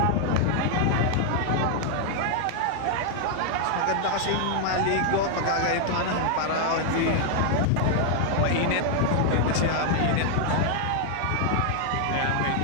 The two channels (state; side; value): different; both; correlation 0.00